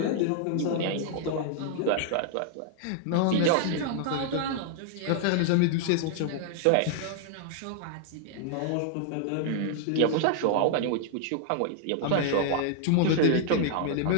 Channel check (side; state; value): both; different; correlation -0.01